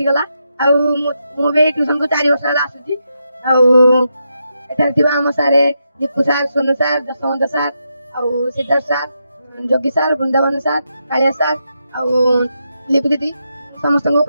गला। आ मु भी ट्यूशन को 4 वर्ष गला आसुची। आ एठार थिबा हम सारे Dipu sir, Sonu sir, Jaswant sir, आ Siddharth sir, Jogi sir, Vrindavan sir, Kalia sir, आ लिपि दीदी समस्त को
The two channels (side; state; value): both; inverted; correlation -0.83